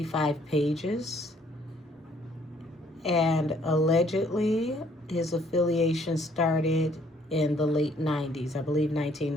pages. And allegedly, his affiliation started in the late 90s, I believe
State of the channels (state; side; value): normal; both; correlation 0.63